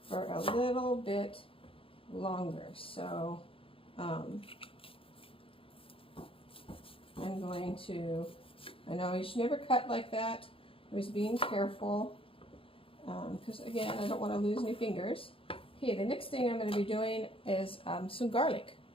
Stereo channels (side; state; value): right; late; 0.26 ms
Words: for a little bit longer. So I'm going to, I know you should never cut like that. I was being careful because again, I don't want to lose any fingers. Okay, the next thing I'm going to be doing is some garlic.